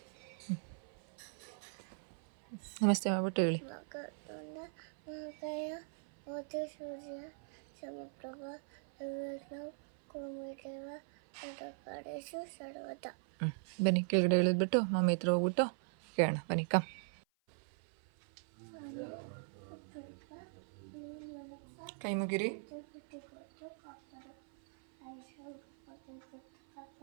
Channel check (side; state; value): left; silent; 51 dB below the other